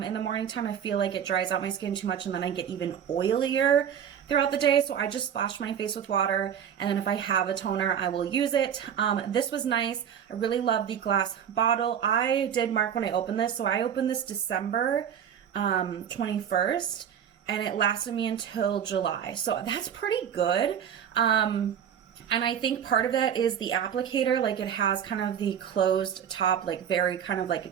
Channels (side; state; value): left; quieter; 8.6 dB